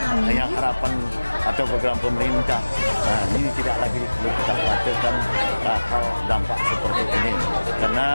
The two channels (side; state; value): both; inverted; correlation -1.00